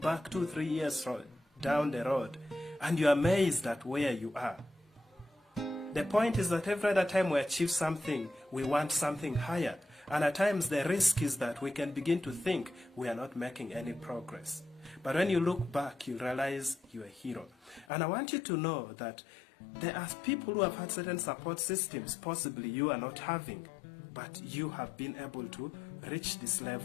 2-3 years down the road and you're amazed at where you are. The point is that every other time we achieve something, we want something higher. And at times the risk is that we can begin to think we are not making any progress. But when you look back, you realize you're a hero. And I want you to know that there are people who have had certain support systems, possibly you are not having, but you have been able to reach this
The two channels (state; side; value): drops out; right; at 17.9 s